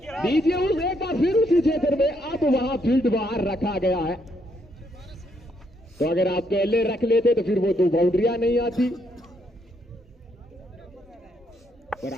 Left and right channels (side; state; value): both; normal; correlation 0.74